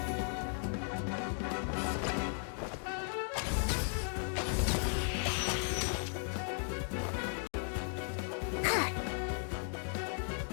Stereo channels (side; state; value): right; silent; 54 dB below the other